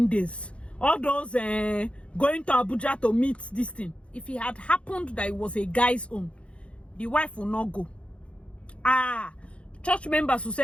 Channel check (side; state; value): right; late; 0.060 ms